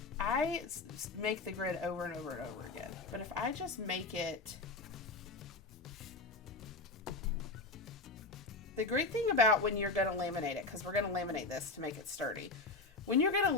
I make the grid over and over and over again. But if I just make it, the great thing about when you're going to laminate it, because we're going to laminate this to make it sturdy, when you're going to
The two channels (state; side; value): quieter; right; 3.4 dB